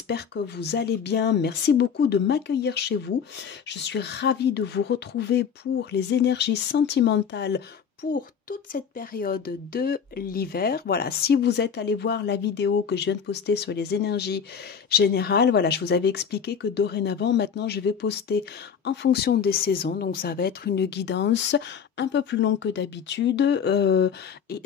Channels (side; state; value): right; quieter; 7.1 dB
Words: que vous allez bien. Merci beaucoup de m'accueillir chez vous. Je suis ravie de vous retrouver pour les énergies sentimentales pour toute cette période de l'hiver. Voilà, si vous êtes allé voir la vidéo que je viens de poster sur les énergies générales, voilà, je vous avais expliqué que dorénavant, maintenant, je vais poster en fonction des saisons. Donc, ça va être une guidance un peu plus longue que d'habitude